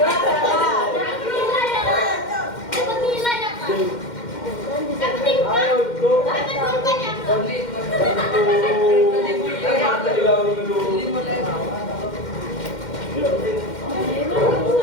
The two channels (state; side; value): late; right; 2.1 ms